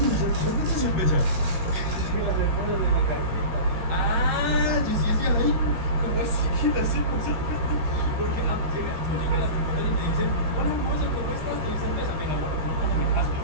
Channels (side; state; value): left; late; 13 ms